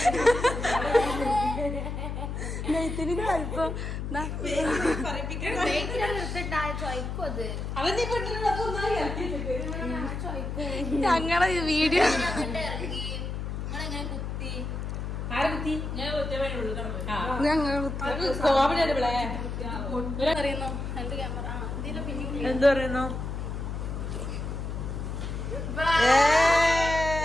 നെയ്ത്തിരിന്റെ വലിപ്പം ഞങ്ങളെ വീഡിയോ എന്ത് പറയുന്നു?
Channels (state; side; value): noise; left; hum, 4 dB below the sound